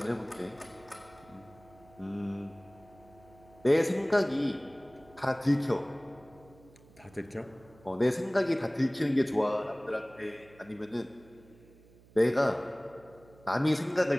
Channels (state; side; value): noise; right; hum, 25 dB below the sound